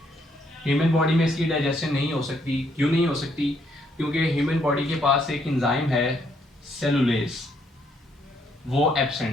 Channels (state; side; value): normal; both; correlation 0.71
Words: ह्यूमन बॉडी में इसकी डाइजेशन नहीं हो सकती। क्यों नहीं हो सकती? क्योंकि ह्यूमन बॉडी के पास एक एंजाइम है सेलुलेज, वो